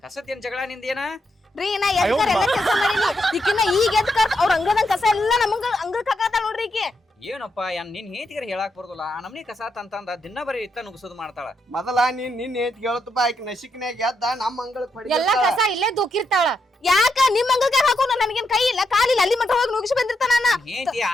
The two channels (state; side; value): normal; both; correlation 0.81